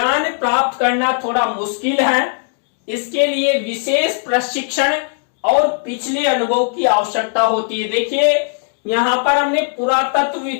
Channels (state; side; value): silent; right; digital silence